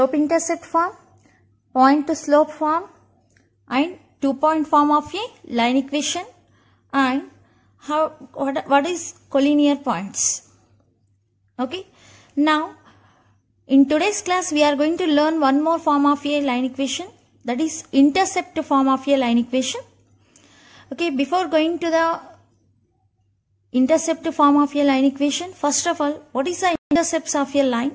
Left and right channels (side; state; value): both; identical; correlation 1.00